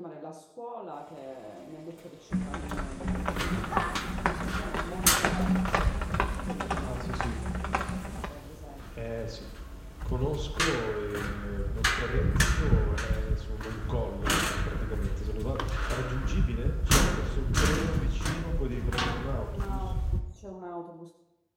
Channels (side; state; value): both; identical; correlation 1.00